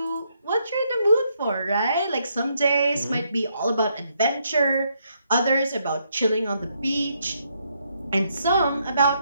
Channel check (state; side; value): inverted; both; correlation -0.75